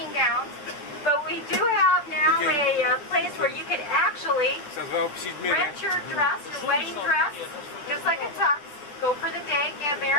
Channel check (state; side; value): late; right; 10 ms